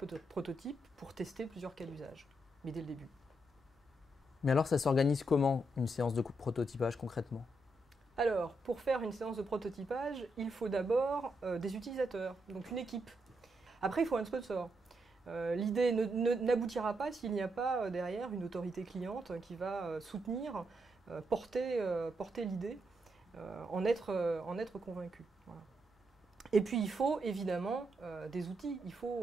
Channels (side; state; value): both; normal; correlation 0.81